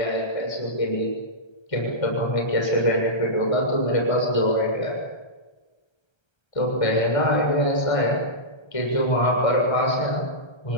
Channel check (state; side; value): late; right; 1.3 ms